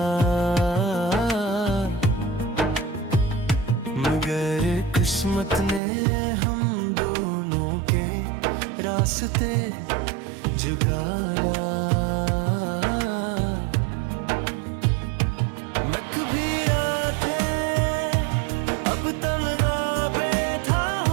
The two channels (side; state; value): left; drops out; at 5.8 s